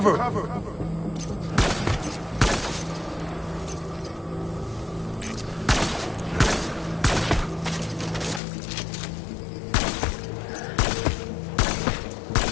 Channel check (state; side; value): drops out; right; at 8.4 s